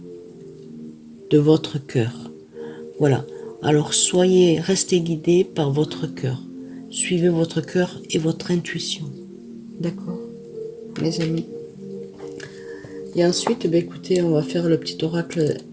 de votre cœur. Voilà. Alors restez guidés par votre cœur. Suivez votre cœur et votre intuition. D'accord, mes amis? Et ensuite, écoutez, on va faire le petit oracle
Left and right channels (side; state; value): both; identical; correlation 1.00